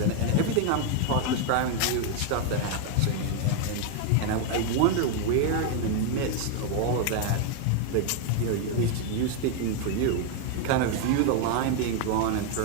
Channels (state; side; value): different; both; correlation 0.01